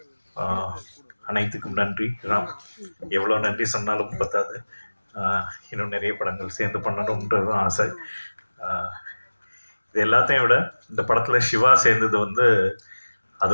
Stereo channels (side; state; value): both; inverted; correlation -1.00